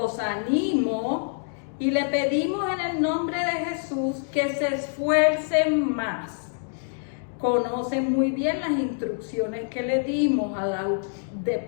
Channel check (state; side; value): silent; right; digital silence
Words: animo y le pedimos en el nombre de Jesús que se esfuercen más. Conocen muy bien las instrucciones que le dimos